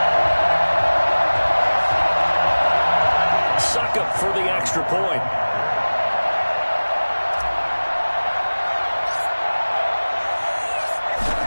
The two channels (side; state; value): both; inverted; correlation -1.00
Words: Suck up for the extra point.